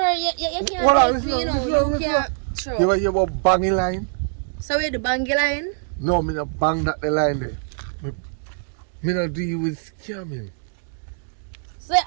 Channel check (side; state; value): left; silent; 62 dB below the other